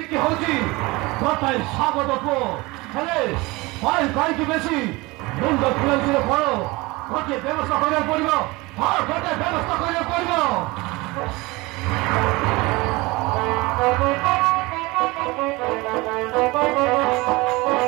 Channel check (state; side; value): quieter; left; 22.9 dB